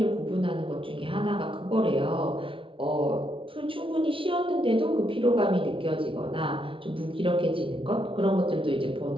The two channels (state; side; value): late; left; 0.25 ms